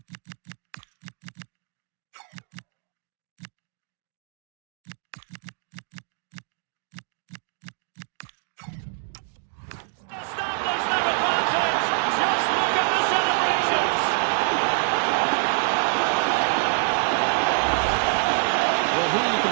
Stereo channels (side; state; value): left; silent; 58 dB below the other